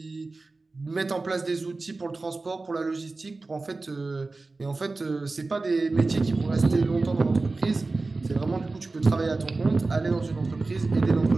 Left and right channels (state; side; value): quieter; left; 3.5 dB